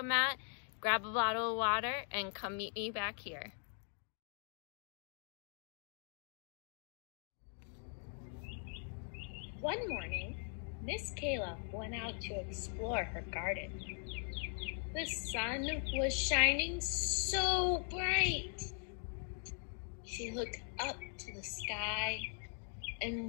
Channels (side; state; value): right; silent; 51 dB below the other